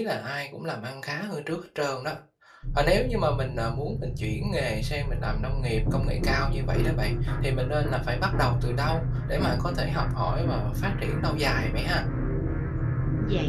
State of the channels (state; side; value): identical; both; correlation 1.00